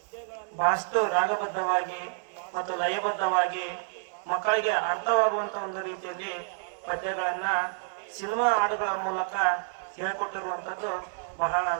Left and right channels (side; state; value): left; silent; digital silence